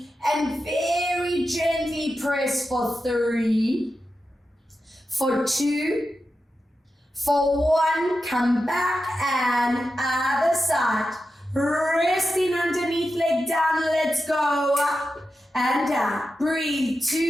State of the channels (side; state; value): both; normal; correlation 0.90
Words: And very gently press for 3, for 2, for 1, come back and other side. Resting underneath, leg down, let's go up and down. Breathe,